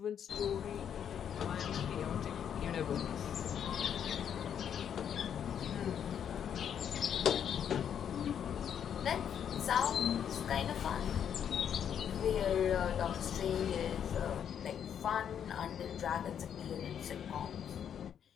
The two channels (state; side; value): quieter; right; 8.6 dB